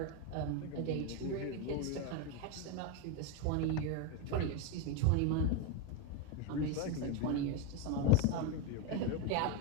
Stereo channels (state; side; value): different; both; correlation 0.02